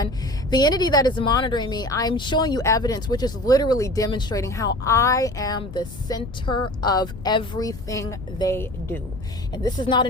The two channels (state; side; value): noise; left; rumble, 14 dB below the sound